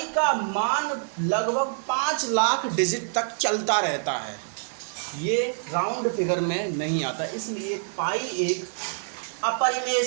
का मान लगभग 5 लाख डिजिट तक चलता रहता है, ये राउंड फिगर में नहीं आता, इसलिए पाई एक अपरिमेय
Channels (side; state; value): left; silent; 61 dB below the other